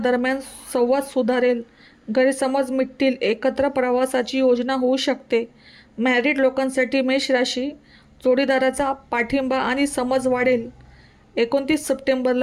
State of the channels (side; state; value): both; identical; correlation 1.00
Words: संवाद सुधारेल. गैरसमज मिटतील. एकत्र प्रवासाची योजना होऊ शकते. मॅरिड लोकांसाठी मेष राशी जोडीदाराचा पाठिंबा आणि समज वाढेल. 29